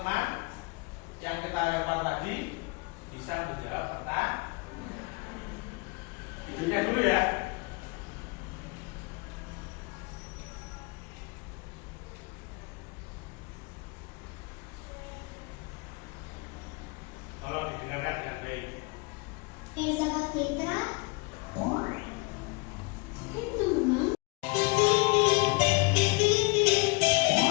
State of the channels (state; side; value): quieter; right; 28.8 dB